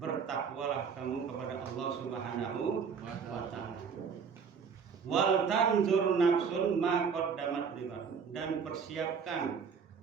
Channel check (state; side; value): quieter; left; 6.2 dB